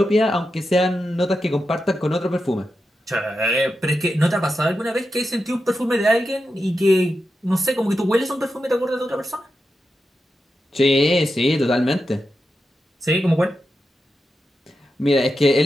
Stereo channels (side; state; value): both; normal; correlation 0.89